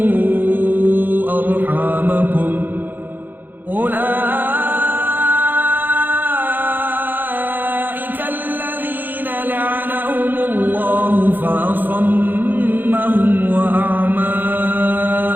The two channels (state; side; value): late; left; 0.090 ms